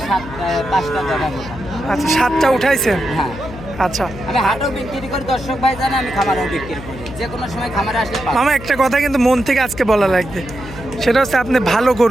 5টা দেখা। আচ্ছা, 7টা উঠাইছেন? হ্যাঁ। আচ্ছা, আমি হাটেও বিক্রি করি, দর্শক ভাই জানে আমি খামারেও বিক্রি করি, যে কোনো সময় খামারে আসলে পাবো। মামা, একটা কথা কিন্তু মন থেকে আজকে বলা লাগবে, সেটা হচ্ছে আপনি ভালো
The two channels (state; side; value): noise; left; hum, 13 dB below the sound